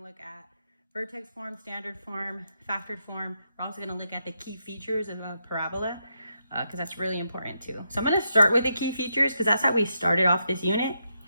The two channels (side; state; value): both; inverted; correlation -0.82